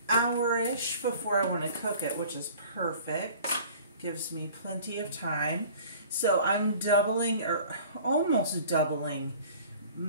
hour-ish before I want to cook it, which is perfect. Gives me plenty of time. So I'm doubling, or almost doubling,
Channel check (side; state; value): both; inverted; correlation -0.47